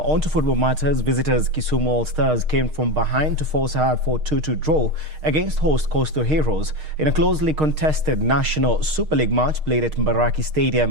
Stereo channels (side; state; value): left; late; 6.5 ms